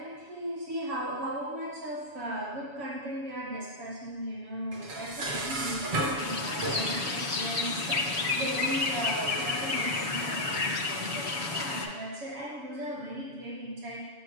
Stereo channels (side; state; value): left; late; 7.1 ms